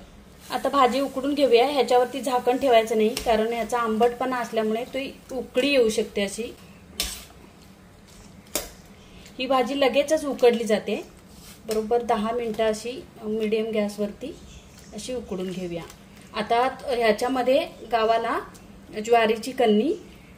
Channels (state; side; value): identical; both; correlation 1.00